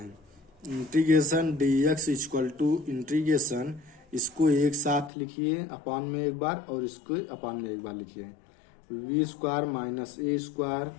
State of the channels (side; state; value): right; drops out; at 5.1 s